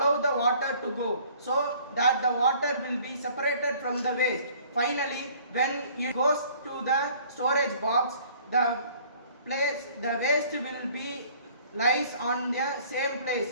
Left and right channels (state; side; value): inverted; both; correlation -0.54